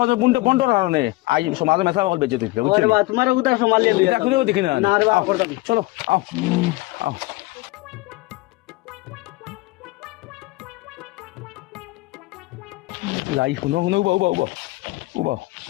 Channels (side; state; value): right; quieter; 21.0 dB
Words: বন্টর কারণে আই সমাজে মেসা বল বেঁচে তুই বুঝছো ওরে বা তোমার উদার সোমালিয়া দিয়ে এটা খুলেও দেখি না না রে বা করতাম না। চলো আও আও লাই শুনো শুনো উবাও উবাও উবাও উবাও